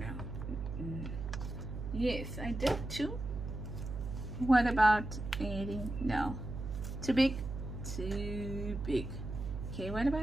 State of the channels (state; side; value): noise; right; hum, 6 dB below the sound